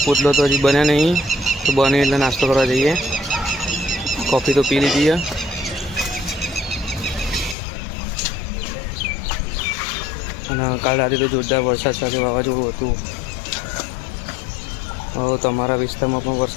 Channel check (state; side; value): drops out; right; at 7.6 s